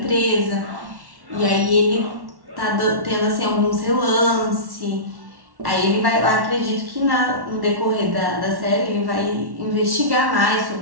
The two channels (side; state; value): left; late; 1.1 ms